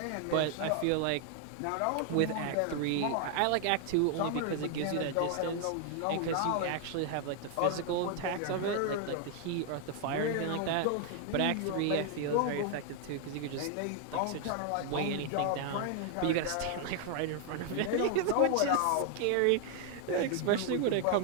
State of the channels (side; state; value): both; different; correlation 0.00